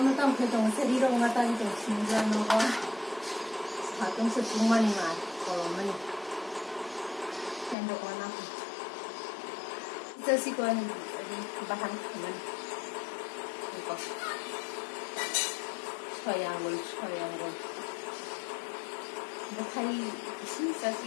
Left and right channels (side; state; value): right; drops out; at 7.8 s